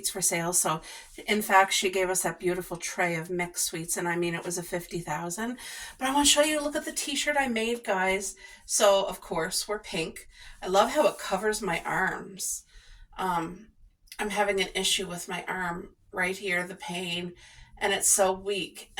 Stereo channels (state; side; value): identical; both; correlation 1.00